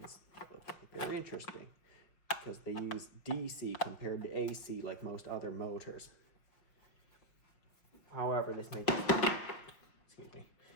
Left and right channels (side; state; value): right; late; 5.4 ms